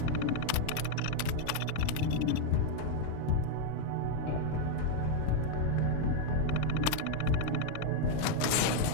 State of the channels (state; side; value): different; both; correlation 0.00